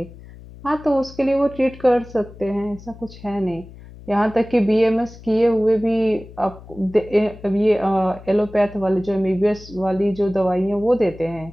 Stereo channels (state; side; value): noise; left; hum, 18 dB below the sound